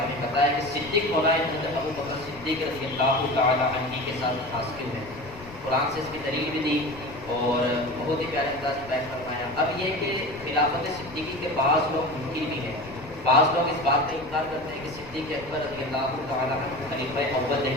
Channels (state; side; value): noise; left; rumble, 18 dB below the sound